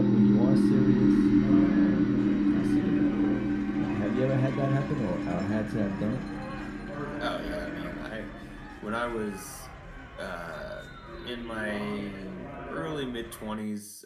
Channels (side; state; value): both; identical; correlation 1.00